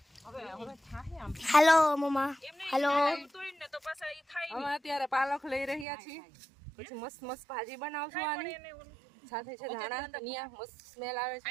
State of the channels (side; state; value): left; drops out; at 5.9 s